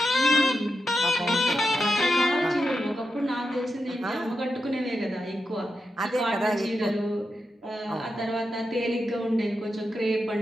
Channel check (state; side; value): normal; both; correlation 0.87